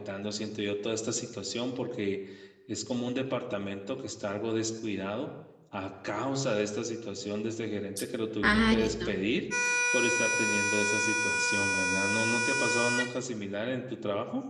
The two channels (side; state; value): both; identical; correlation 1.00